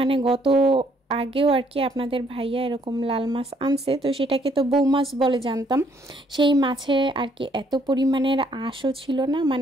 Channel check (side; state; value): both; normal; correlation 0.67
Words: আগেও আর কি আপনাদের ভাইয়া এরকম লাল মাছ আনছে, তো সেটাকে তো বউ মাছ বলে জানতাম। সেই মাছে আর কি এত পরিমাণের আঁশও ছিল না,